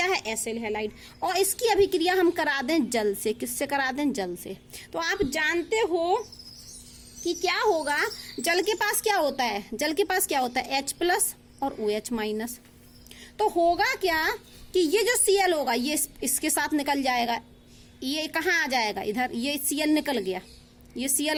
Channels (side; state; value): both; identical; correlation 1.00